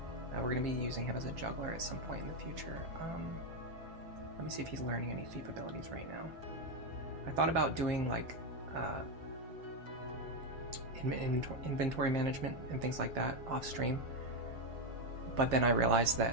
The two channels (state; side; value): late; left; 7.5 ms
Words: We're going to be using him as a juggler at some point in the future. Let me see if he's learning any thief abilities right now. I thought about doing like inventory management and things like that off stream, but then I realized